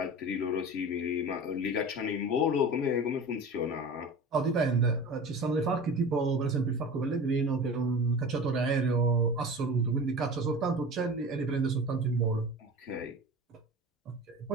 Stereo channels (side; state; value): both; normal; correlation 0.34